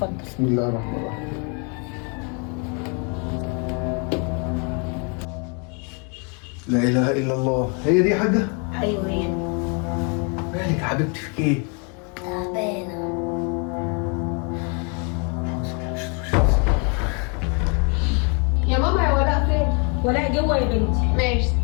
بسم الله الرحمن الرحيم. لا اله الا الله. هي دي يا حاجه؟ ايوه هي. مالك يا حبيبتي في ايه؟ تعبانة. يا ماما يا ولاء فين؟ ولاء جوه يا بنتي. ماشي.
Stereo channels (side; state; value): right; quieter; 36.0 dB